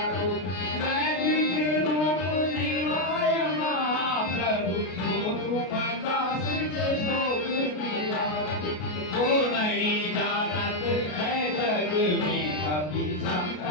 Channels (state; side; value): late; right; 33 ms